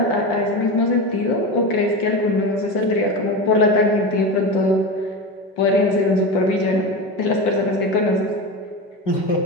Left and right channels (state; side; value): late; right; 5.7 ms